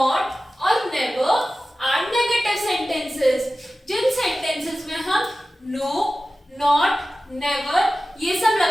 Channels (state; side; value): normal; both; correlation 0.95